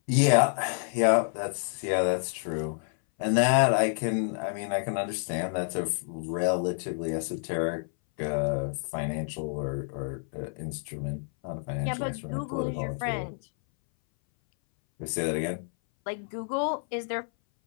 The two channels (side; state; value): right; silent; 59 dB below the other